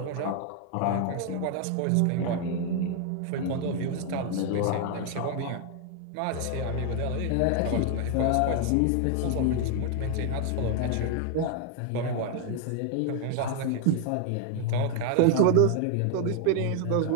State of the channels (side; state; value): both; different; correlation 0.00